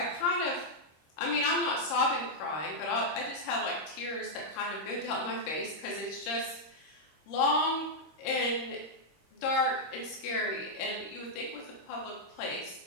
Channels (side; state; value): right; late; 26 ms